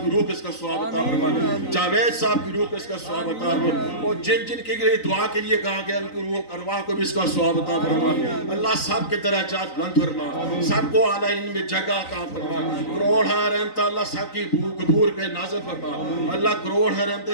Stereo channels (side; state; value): right; late; 3.9 ms